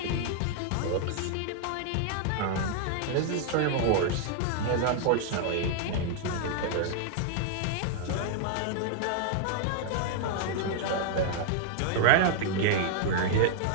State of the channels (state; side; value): different; both; correlation -0.01